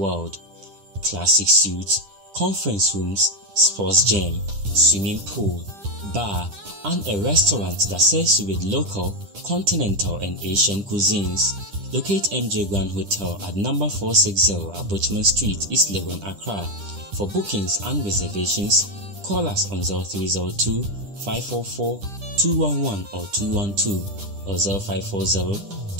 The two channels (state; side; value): late; left; 10 ms